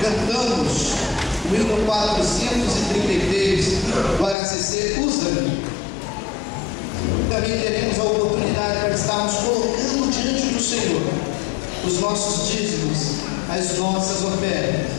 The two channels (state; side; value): drops out; right; at 4.4 s